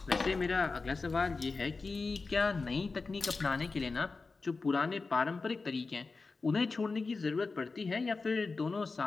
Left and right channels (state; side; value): quieter; right; 4.1 dB